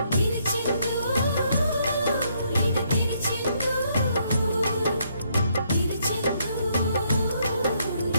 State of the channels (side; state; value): both; inverted; correlation -0.72